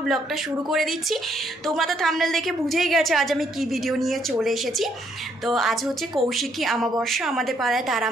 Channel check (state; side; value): normal; both; correlation 0.70